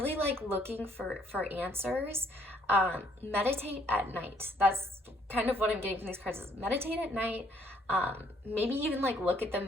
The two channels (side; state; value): both; normal; correlation 0.66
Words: like looking for answers, meditate at night. That's kind of what I'm getting from these cards, is meditate at night. Maybe even like look at the